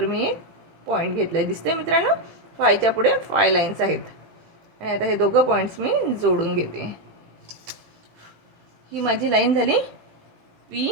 मी एक पॉईंट घेतला आहे. दिसतंय मित्रांनो, 5च्या पुढे 5 लाईन्स आहेत. आणि आता हे दोघं पॉईंट्स मी जोडून घेते. ही माझी लाईन झाली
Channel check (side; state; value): left; late; 18 ms